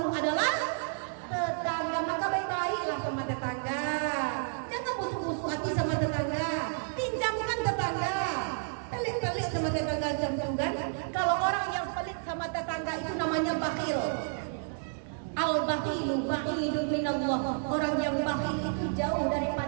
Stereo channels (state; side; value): silent; left; 57 dB below the other